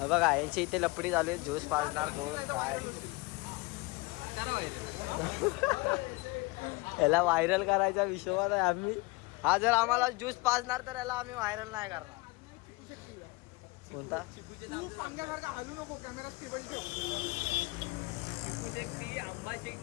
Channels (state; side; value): quieter; right; 24.4 dB